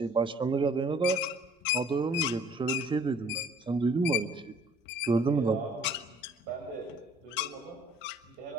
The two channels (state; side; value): normal; both; correlation 0.56